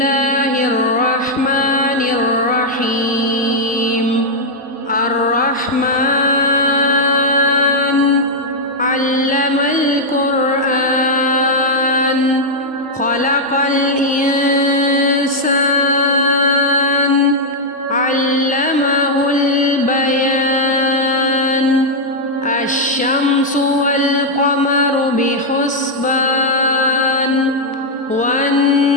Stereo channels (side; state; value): both; normal; correlation -0.03